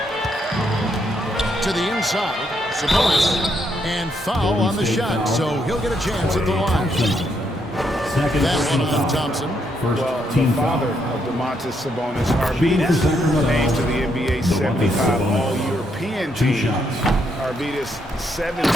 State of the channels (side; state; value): both; normal; correlation 0.76